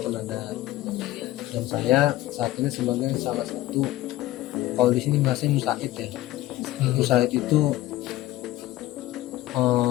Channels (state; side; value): quieter; right; 15.8 dB